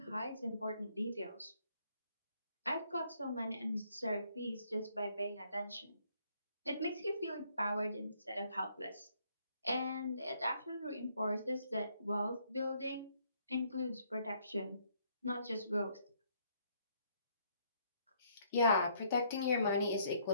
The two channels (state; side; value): inverted; both; correlation -0.68